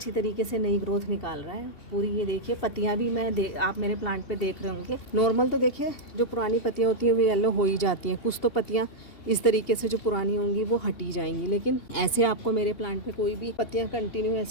तरीके से नई ग्रोथ निकाल रहा है पूरी। ये देखिए पत्तियाँ भी आप मेरे प्लांट पे देख रहे होंगे, नॉर्मल तो देखिए जो पुरानी पत्तियाँ होती हैं वो येलो हो ही जाती हैं, कुछ तो पत्तियाँ इस तरीके से जो पुरानी होंगी वो हटी जाएंगी। लेकिन ऐसे आपको मेरे प्लांट पे कोई भी पत्तियाँ कंटिन्यू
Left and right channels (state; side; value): late; right; 2.8 ms